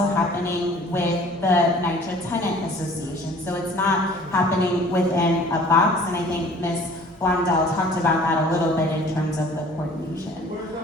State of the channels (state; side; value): normal; both; correlation 0.50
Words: happening with the NYCHA Tenant Association. So it's not happening within a box, and I think Ms. Blondell talked about that a little bit in terms of the coordination.